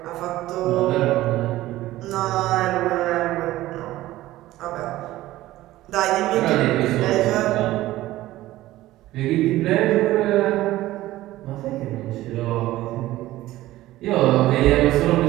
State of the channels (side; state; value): left; quieter; 16.1 dB